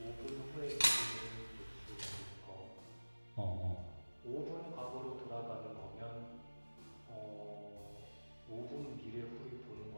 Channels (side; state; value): both; inverted; correlation -1.00